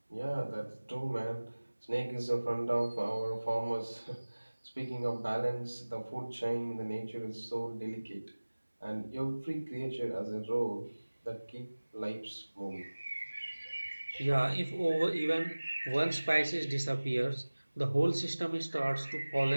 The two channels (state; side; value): inverted; both; correlation -1.00